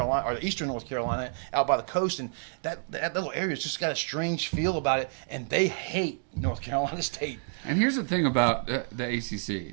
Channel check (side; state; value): left; silent; 59 dB below the other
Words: or Eastern North Carolina, out by the coast. And that little area's just got a strange feel about it, and they hate North Carolina State. And here's the thing about the